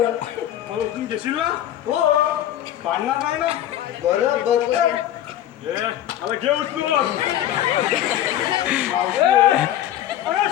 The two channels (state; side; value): quieter; right; 11.9 dB